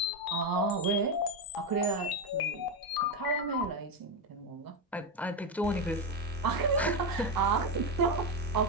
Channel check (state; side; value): normal; both; correlation 0.10